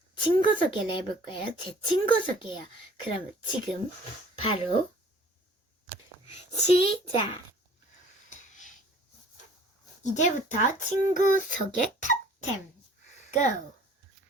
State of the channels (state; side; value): normal; both; correlation 0.52